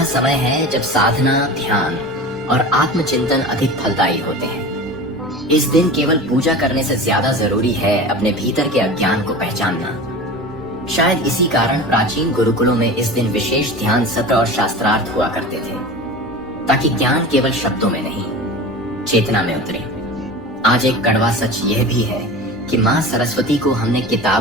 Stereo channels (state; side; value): normal; both; correlation 0.33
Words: समय है जब साधना, ध्यान और आत्मचिंतन अधिक फलदायी होते हैं। इस दिन केवल पूजा करने से ज्यादा जरूरी है अपने भीतर के अज्ञान को पहचानना। शायद इसी कारण प्राचीन गुरुकुलों में इस दिन विशेष ध्यान सत्र और शास्त्रार्थ हुआ करते थे, ताकि ज्ञान केवल शब्दों में नहीं, चेतना में उतरे। आज एक कड़वा सच यह भी है कि माँ सरस्वती को हमने